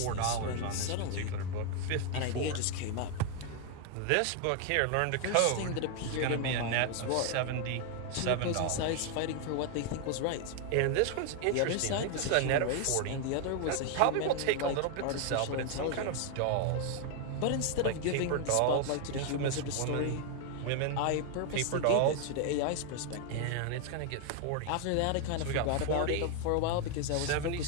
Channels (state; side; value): different; both; correlation 0.00